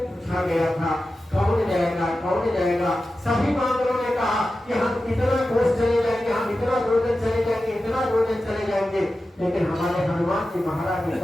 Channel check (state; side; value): normal; both; correlation 0.93